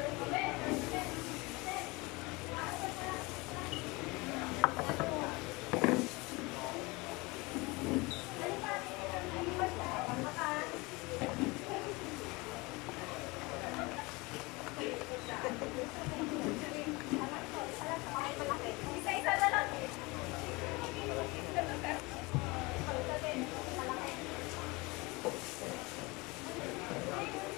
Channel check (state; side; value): quieter; right; 24.8 dB